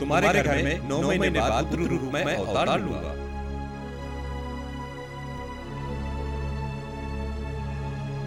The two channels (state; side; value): identical; both; correlation 1.00